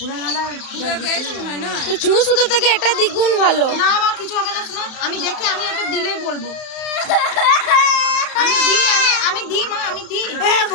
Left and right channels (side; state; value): right; late; 31 ms